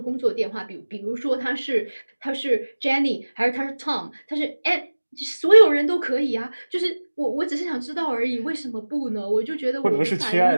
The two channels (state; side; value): inverted; both; correlation -1.00